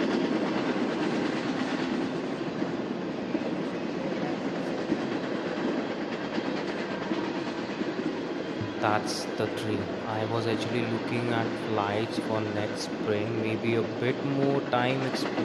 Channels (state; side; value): identical; both; correlation 1.00